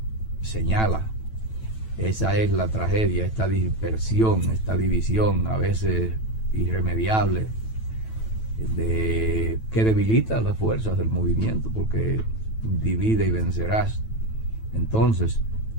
señala. Esa es la tragedia, esta dispersión, esta división a veces irremediable, que debilita las fuerzas del movimiento, porque divide y vencerás. Entonces,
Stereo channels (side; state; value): right; late; 9.1 ms